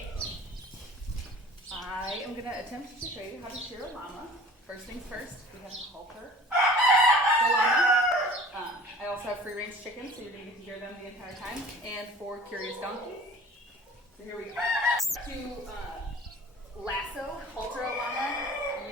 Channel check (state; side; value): normal; both; correlation 0.45